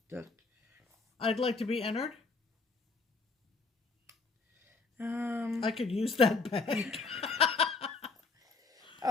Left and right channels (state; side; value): quieter; right; 4.1 dB